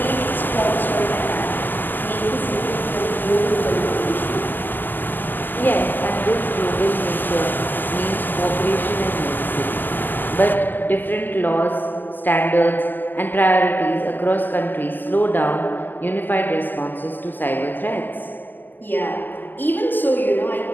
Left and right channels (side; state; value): right; late; 0.088 ms